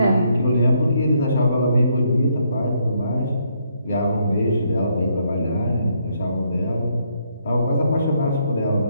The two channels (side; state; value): both; inverted; correlation -0.73